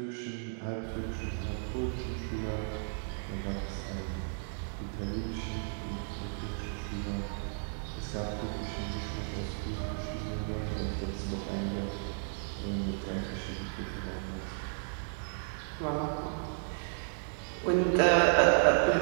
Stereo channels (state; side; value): silent; left; digital silence